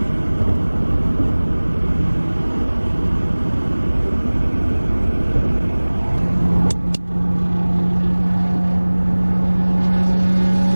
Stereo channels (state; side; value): inverted; both; correlation -1.00